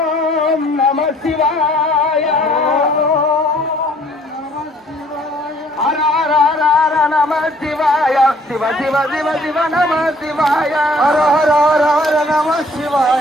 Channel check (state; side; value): normal; both; correlation 0.59